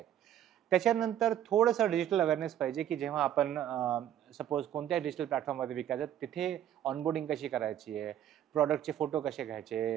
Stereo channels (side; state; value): left; quieter; 11.0 dB